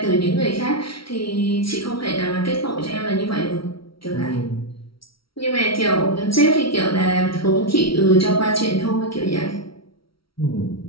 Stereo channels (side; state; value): right; late; 0.75 ms